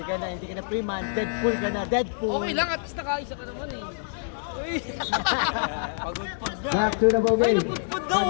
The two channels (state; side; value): silent; right; digital silence